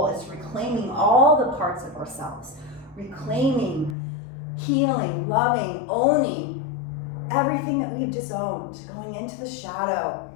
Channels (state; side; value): drops out; right; at 4.0 s